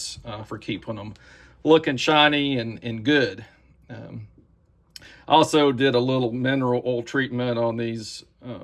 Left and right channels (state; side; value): identical; both; correlation 1.00